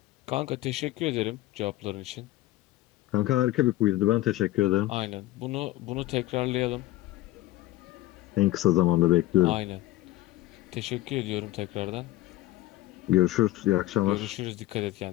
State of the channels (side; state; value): right; quieter; 16.7 dB